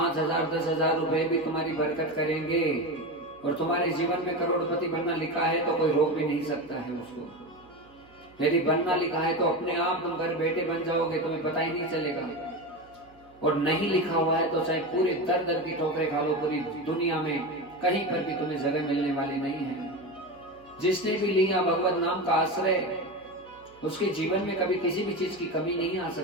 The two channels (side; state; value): right; noise; hum, 28 dB below the sound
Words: 10,000 रुपए भी तुम्हारी बरकत करेंगे और तुम्हारे जीवन में करोड़पति बनना लिखा है तो कोई रोक भी नहीं सकता है उसको। यदि बनना लिखा है तो अपने आप तुम घर बैठे बन जाओगे, तुम्हें पता ही नहीं चलेगा। और नहीं लिखा हुआ है तो चाहे पूरे दर दर की ठोकरें खा लो, पूरी दुनिया में कहीं पर भी तुम्हें जगह मिलने वाली नहीं है। जिसने भी लिया भगवत नाम का आश्रय, उसके जीवन में कभी किसी भी चीज की कमी नहीं आ